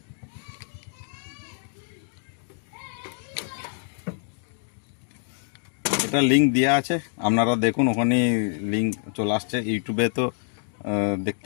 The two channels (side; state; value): right; silent; 60 dB below the other